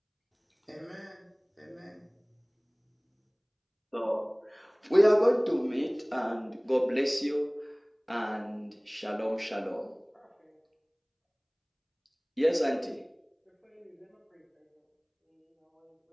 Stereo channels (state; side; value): identical; both; correlation 1.00